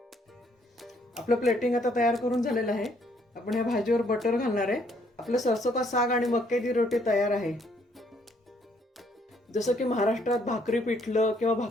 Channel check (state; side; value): normal; both; correlation 0.67